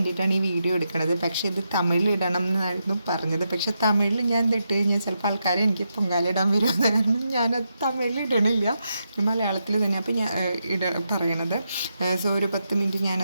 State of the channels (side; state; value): both; inverted; correlation -0.84